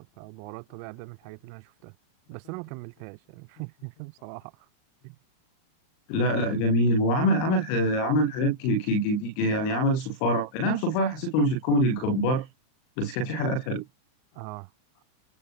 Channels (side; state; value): right; late; 38 ms